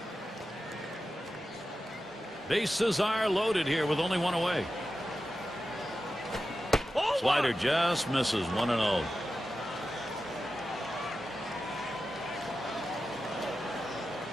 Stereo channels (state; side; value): normal; both; correlation 0.92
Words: Bases are loaded here with only one away. Slider just misses. 1-0.